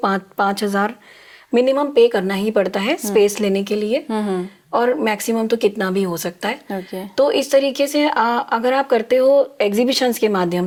मिनिमम पे करना ही पड़ता है स्पेस लेने के लिए, और मैक्सिमम तो कितना भी हो सकता है। तो इस तरीके से अगर आप करते हो एग्जीबिशंस के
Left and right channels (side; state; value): both; identical; correlation 1.00